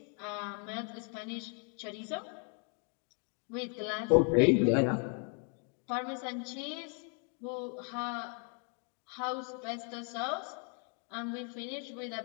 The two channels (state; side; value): quieter; right; 39.3 dB